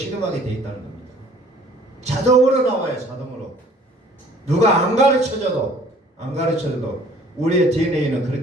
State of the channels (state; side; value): normal; both; correlation 0.54